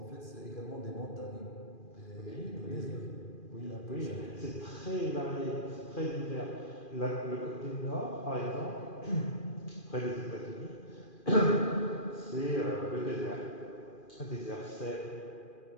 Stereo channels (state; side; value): late; right; 2.4 ms